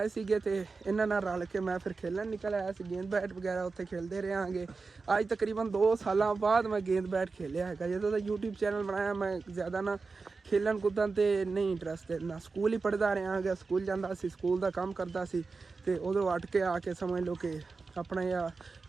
सीगे ते इन्हां नाल रल के मैं फिर खेलन निकल आया सी गेंद बैट वगैरह उत्थे खेलते रहांगे अज तकरीबन 2 साल बाद मैं गेंद बैट खेलिया है जो तो यूट्यूब चैनल बनाया मैं ज़्यादा ना खेलन कूदन ते नहीं इंटरस्ट ना स्कूल ही पढ़ता रहा स्कूल जाता सी स्कूल का काम करता सी ते उधरों अट के आके समझ लो कि अपना या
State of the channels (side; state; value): left; quieter; 4.3 dB